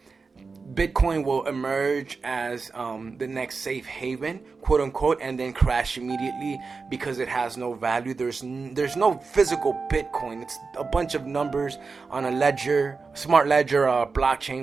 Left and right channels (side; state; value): left; quieter; 4.5 dB